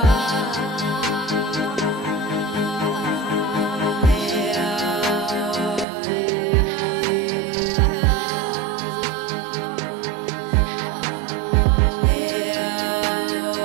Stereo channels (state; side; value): drops out; left; at 5.9 s